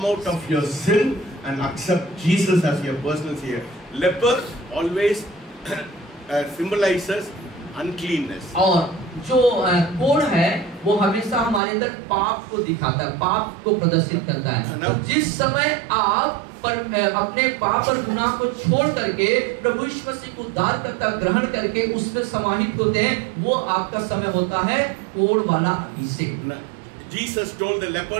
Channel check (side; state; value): left; drops out; at 11.6 s